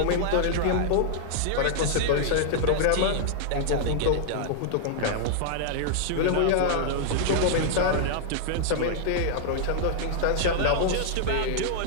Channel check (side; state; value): both; different; correlation -0.01